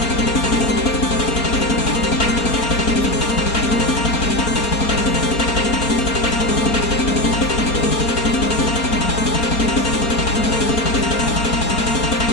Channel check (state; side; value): late; right; 4.3 ms